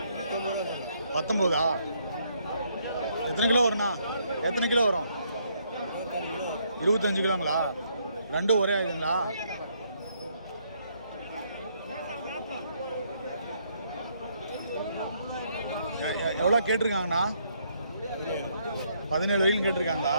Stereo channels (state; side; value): inverted; both; correlation -0.71